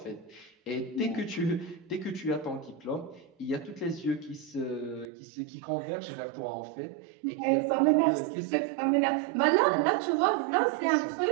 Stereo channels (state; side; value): drops out; left; at 5.1 s